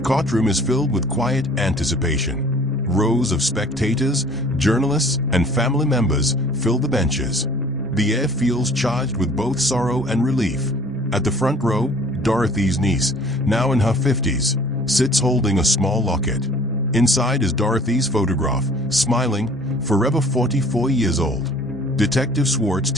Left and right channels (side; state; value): both; normal; correlation 0.51